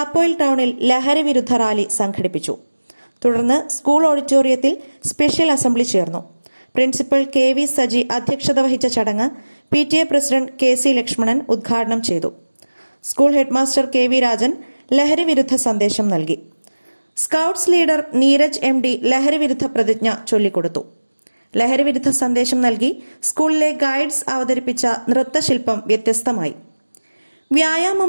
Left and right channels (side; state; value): both; inverted; correlation -1.00